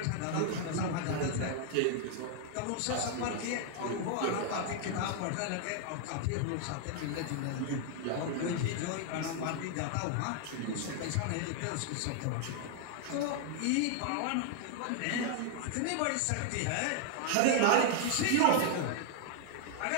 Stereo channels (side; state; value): both; different; correlation 0.00